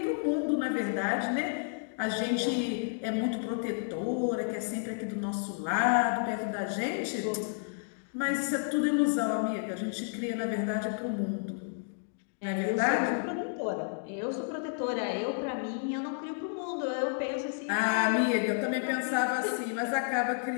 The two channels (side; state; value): right; silent; digital silence